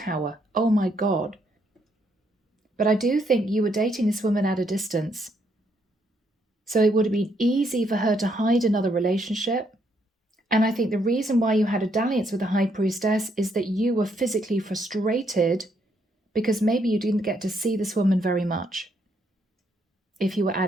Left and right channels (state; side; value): normal; both; correlation 0.73